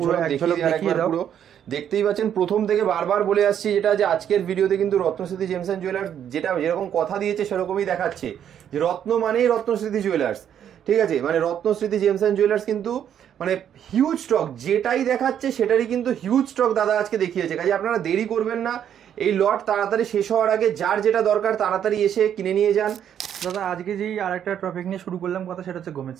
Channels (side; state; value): left; quieter; 9.4 dB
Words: এক ঝলক দেখিয়ে দাও। দেখতেই পাচ্ছেন, প্রথম থেকে বারবার বলে আসছি যেটা, যে আজকের ভিডিওতে কিন্তু রত্নস্মৃতি জেমস এন্ড জুয়েলার্স যেটা যেরকম কথা দিয়েছে সেরকমই দেখাচ্ছে, যে রত্ন মানেই রত্নস্মৃতি জুয়েলার্স। ঠিক আছে, মানে রত্নস্মৃতি জেমস এন্ড জুয়েলার্স কিন্তু মানে হিউজ স্টক, যেটাই দেখাচ্ছে সেটারই কিন্তু হিউজ স্টক দাদা আজকে দেখিয়েছে। কাজে আপনারা দেরি করবেন না, এই লট তাড়াতাড়ি শেষ হওয়ার আগে যার যেটা দরকার তাড়াতাড়ি এসে কিনে নিয়ে যান। দাদা আজকে যেই আরেকটা টপিক নিয়ে শুরু করলাম কথা, সেটা হচ্ছে গোমেজ